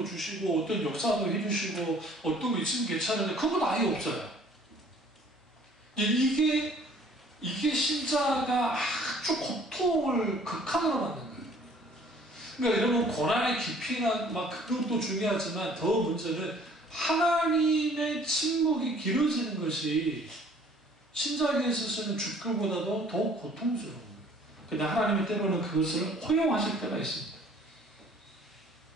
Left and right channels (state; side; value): normal; both; correlation 0.55